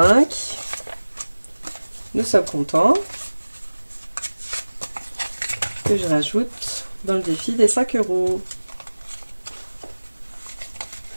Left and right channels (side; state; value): both; inverted; correlation -1.00